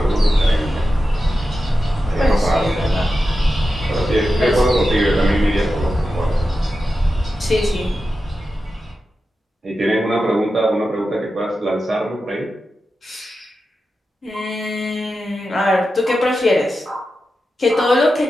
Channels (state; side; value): normal; both; correlation 0.91